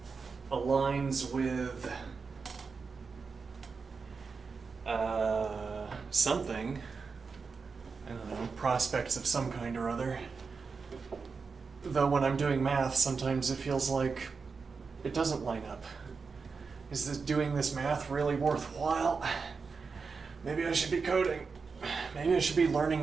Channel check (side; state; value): left; quieter; 5.0 dB